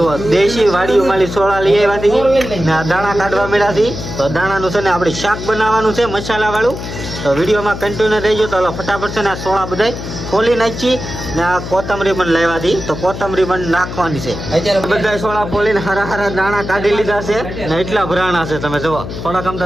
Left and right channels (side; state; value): left; noise; hum, 8 dB below the sound